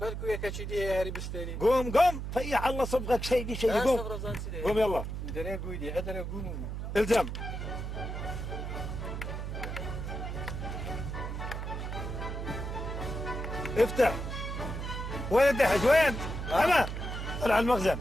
يا كاتشيدي يا هاري بستاني. قوم فيح الله صبغك سيدي قوم. قوم يلا. دري قويدي ادري قوم. الزم. افتح. وين الدحج وين؟ انا طلع المخزن.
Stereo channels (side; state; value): right; noise; hum, 5 dB below the sound